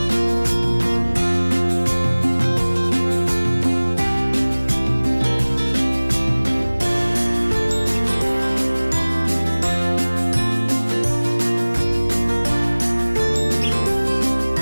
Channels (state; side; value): inverted; both; correlation -1.00